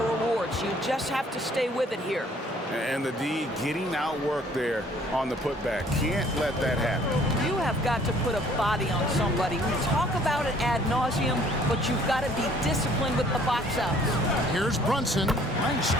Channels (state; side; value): normal; both; correlation 0.58